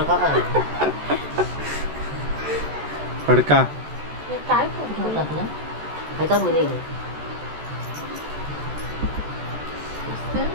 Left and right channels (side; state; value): left; late; 14 ms